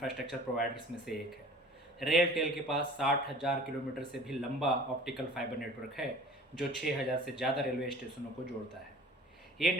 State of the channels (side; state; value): both; normal; correlation 0.45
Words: प्रोवाइडर्स में से एक है। रेलटेल के पास 60,000 किलोमीटर से भी लंबा ऑप्टिकल फाइबर नेटवर्क है, जो 6,000 से ज़्यादा रेलवे स्टेशनों को जोड़ता है। ये